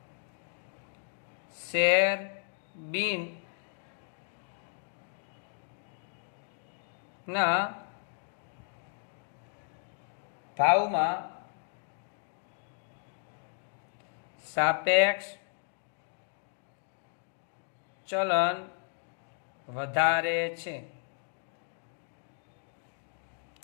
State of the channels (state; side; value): silent; right; 55 dB below the other